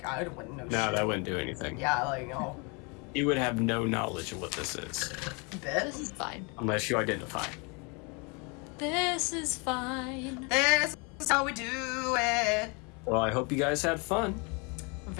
I wouldn't know shit. No, that wouldn't do anything. Yeah, like, no. You would have no knowledge of what this is. Bit. This is fine. Unless you identify. This is fine. This is how we do it. Well, I hope you guys had fun.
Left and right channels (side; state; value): right; quieter; 31.9 dB